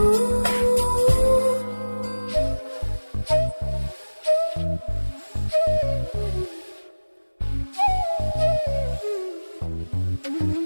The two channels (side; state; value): both; inverted; correlation -1.00